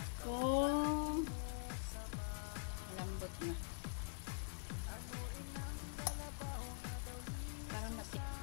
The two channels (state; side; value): silent; right; digital silence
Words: Oh, malambot na. Parang